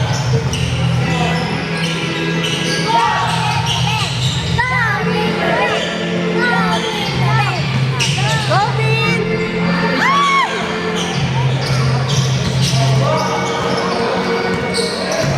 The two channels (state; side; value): identical; both; correlation 1.00